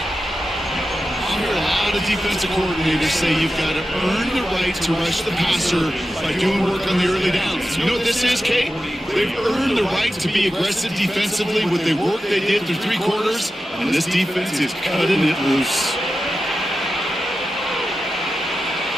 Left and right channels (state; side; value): normal; both; correlation 0.92